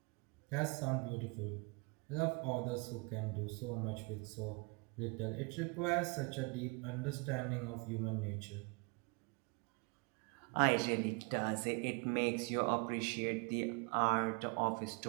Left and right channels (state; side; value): quieter; left; 30.6 dB